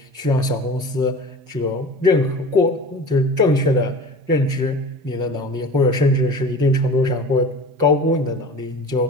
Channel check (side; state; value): left; late; 5.6 ms